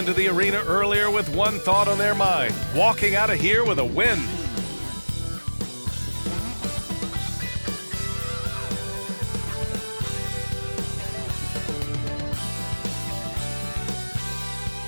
the arena earlier with one thought on their mind, walking out of here with a win.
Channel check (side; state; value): both; inverted; correlation -1.00